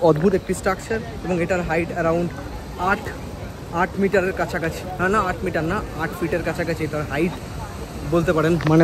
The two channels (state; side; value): identical; both; correlation 1.00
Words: অদ্ভুত একটি স্ট্রাকচার এবং এটার হাইট অ্যারাউন্ড 8 মিটারের কাছাকাছি, না 8 মিটার না, 8 ফিটের কাছাকাছি এটার হাইট বলতে পারেন, মানে